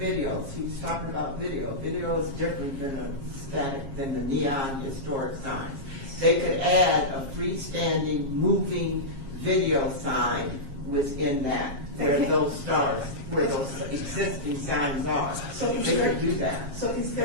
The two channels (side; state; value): left; late; 7.4 ms